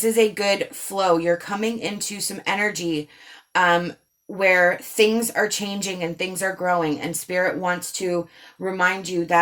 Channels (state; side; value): identical; both; correlation 1.00